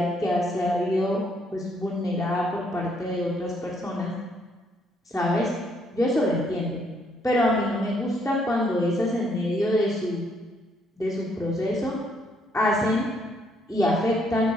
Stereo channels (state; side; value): normal; both; correlation 0.70